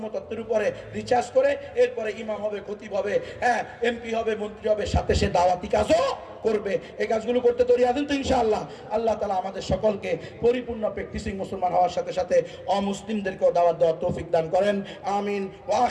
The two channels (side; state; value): both; identical; correlation 1.00